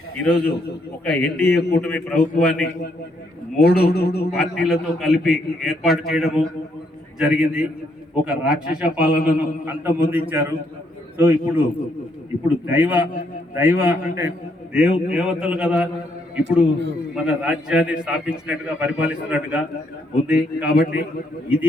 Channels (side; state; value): both; normal; correlation 0.74